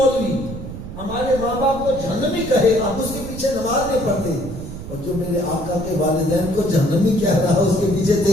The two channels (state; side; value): noise; right; rumble, 10 dB below the sound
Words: ہمارے ماں باپ کو جہنمی کہے آپ اس کے پیچھے نماز نہیں پڑھتے اور جو میرے آقا کے والدین کو جہنمی کہہ رہا ہے اس کے پیچھے